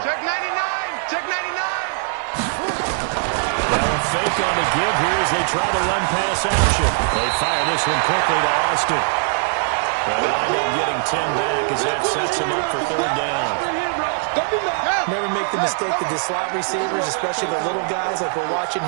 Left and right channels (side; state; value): left; silent; digital silence